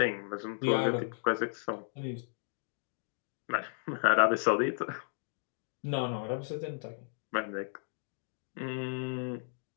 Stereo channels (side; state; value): right; silent; digital silence